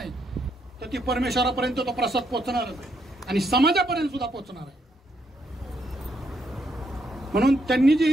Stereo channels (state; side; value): normal; both; correlation 0.76